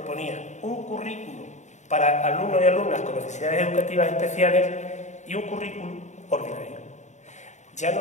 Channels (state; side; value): late; right; 0.34 ms